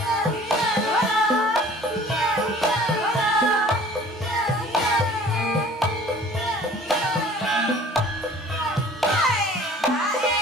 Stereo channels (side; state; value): both; normal; correlation 0.49